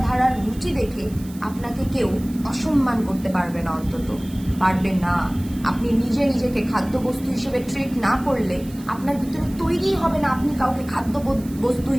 রুচি দেখে আপনাকে কেউ অসম্মান করতে পারবে না, অন্তত পারবে না। আপনি নিজেকে খাদ্যবস্তু হিসেবে ট্রিট না করলে আপনার ভিতরে তৈরি হবে না আপনি কাউকে খাদ্য বস্তু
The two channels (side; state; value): right; noise; hiss, 21 dB below the sound